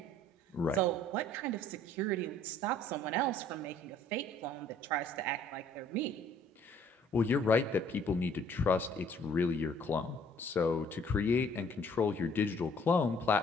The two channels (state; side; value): normal; both; correlation 0.58